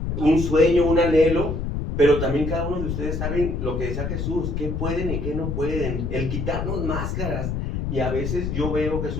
un sueño, un anhelo, pero también cada uno de ustedes saben lo que decía Jesús, qué pueden y qué no pueden, el quitarnos máscaras. Y a veces yo veo,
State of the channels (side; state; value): left; noise; rumble, 2 dB below the sound